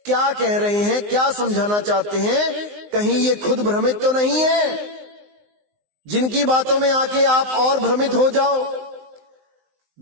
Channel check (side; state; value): left; late; 19 ms